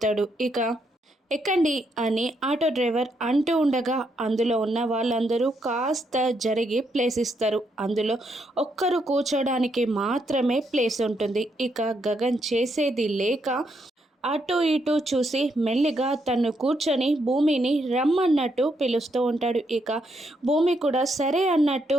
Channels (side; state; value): both; normal; correlation 0.77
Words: ఇక ఎక్కండి అని ఆటో డ్రైవర్ అంటూ ఉండగా అందులో ఉన్న వాళ్ళందరూ కాస్త జరిగి ప్లేస్ ఇస్తారు. అందులో ఒక్కరు కూర్చోడానికి మాత్రమే ప్లేస్ ఉంటుంది. ఇక గగన్ చేసేది లేక అటు ఇటు చూసి మెల్లిగా తను కూర్చొని భూమిని రమ్మన్నట్టు పిలుస్తూ ఉంటాడు. ఇక భూమి కూడా సరే అన్నట్టు